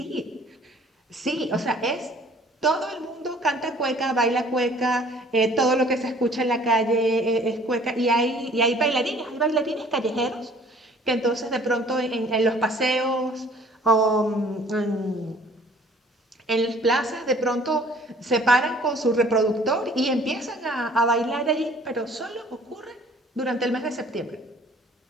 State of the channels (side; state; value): both; normal; correlation 0.54